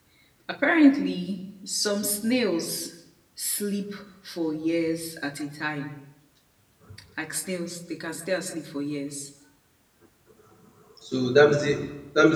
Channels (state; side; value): identical; both; correlation 1.00